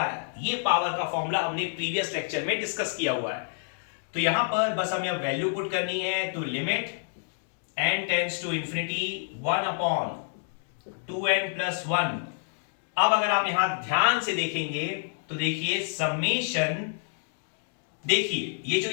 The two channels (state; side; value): silent; right; digital silence